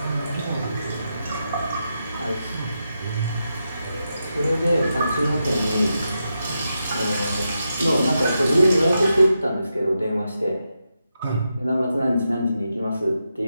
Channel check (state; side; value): inverted; both; correlation -0.86